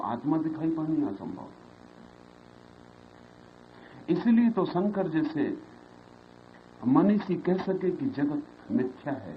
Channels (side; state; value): both; identical; correlation 1.00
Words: दिखाई पड़नी असंभव है। इसलिए तो शंकर जैसे मनीषी कह सके कि जगत मिथ्या